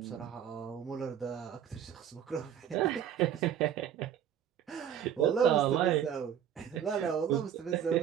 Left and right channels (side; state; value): left; quieter; 9.4 dB